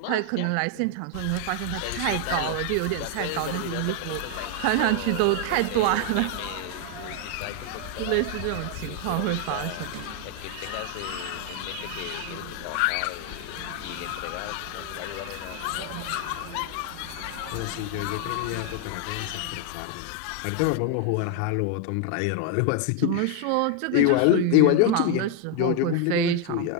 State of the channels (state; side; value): different; both; correlation 0.01